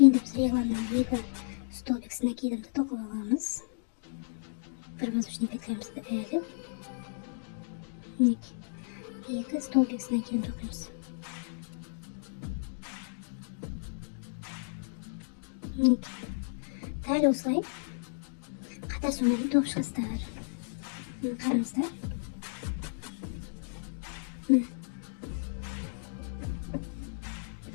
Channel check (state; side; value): silent; right; digital silence